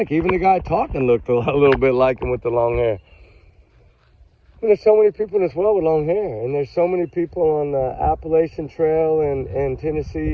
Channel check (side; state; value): both; identical; correlation 1.00